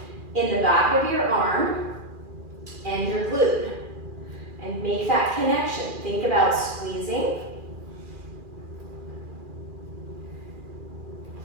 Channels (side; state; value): left; late; 2.4 ms